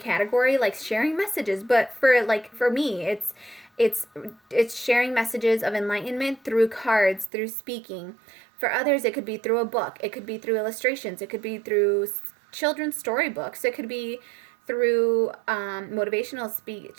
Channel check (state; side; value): drops out; left; at 7.3 s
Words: like sharing messages. But for me, it's sharing messages of enlightenment through cards, through speaking. For others, it could be through a book. It could be through illustrations. It could be through children's storybooks. It could be through motivational